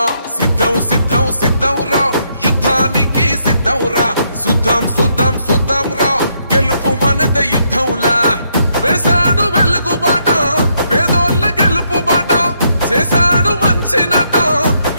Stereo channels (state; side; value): inverted; both; correlation -0.75